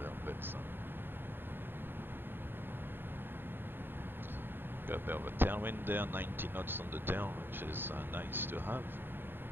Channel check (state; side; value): late; left; 0.10 ms